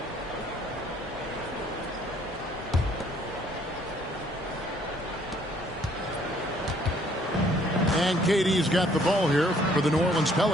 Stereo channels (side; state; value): both; normal; correlation 0.62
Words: And KD's got the ball here for the New Orleans